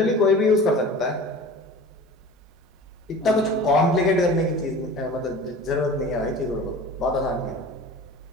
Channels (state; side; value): normal; both; correlation 0.39